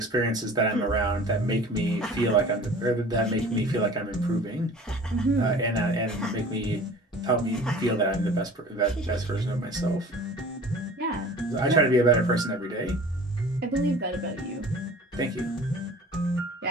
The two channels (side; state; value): both; normal; correlation 0.44